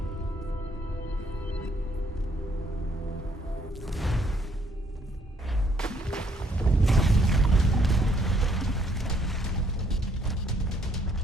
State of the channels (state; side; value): normal; both; correlation 0.69